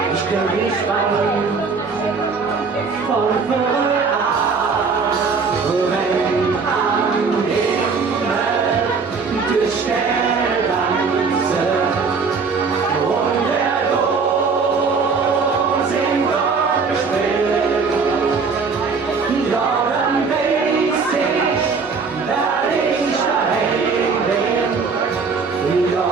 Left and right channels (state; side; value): quieter; left; 5.0 dB